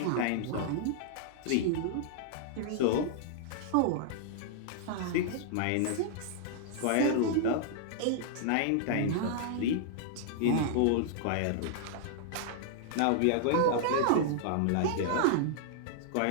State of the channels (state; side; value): different; both; correlation -0.01